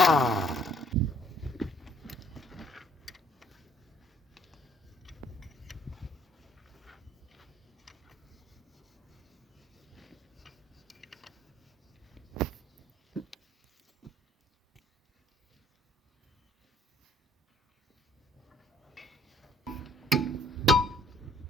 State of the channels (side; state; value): both; normal; correlation 0.61